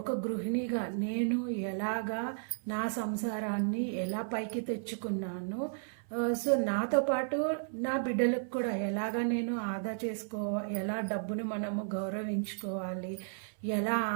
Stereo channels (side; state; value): left; silent; 55 dB below the other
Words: గృహిణిగా నేను ఎలాగా నా సంసారాన్ని ఎలా పైకి తెచ్చుకున్నాను, సో నాతో పాటు నా బిడ్డలకు కూడా ఎలాగా నేను ఆదా ఎలా డబ్బును మనము గౌరవించుకోవాలి, ఎలా